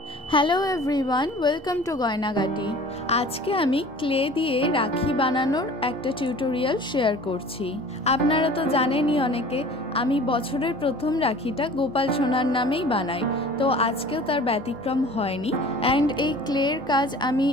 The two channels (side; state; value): both; normal; correlation 0.45